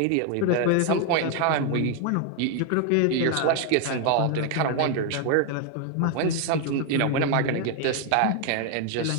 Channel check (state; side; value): different; both; correlation 0.01